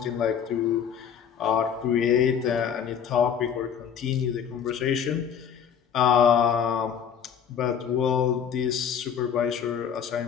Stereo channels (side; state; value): right; quieter; 7.9 dB